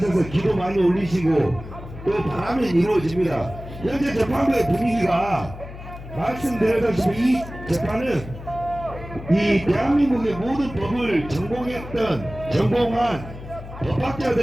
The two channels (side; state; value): left; noise; hum, 13 dB below the sound